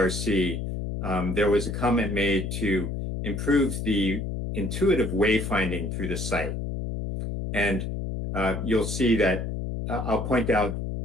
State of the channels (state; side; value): noise; left; hum, 4 dB below the sound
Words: there was a comment made to improve the intuitive wayfinding through the site. And you'll see that I'll point out